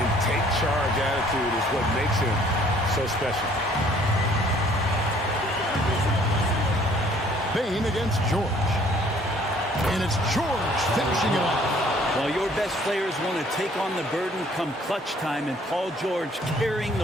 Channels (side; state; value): both; normal; correlation 0.58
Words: take charge attitude is what makes him so special. Bane against George. And it's George finishing it off. Well, your best players want to take on the burden come clutch time, and Paul George carrying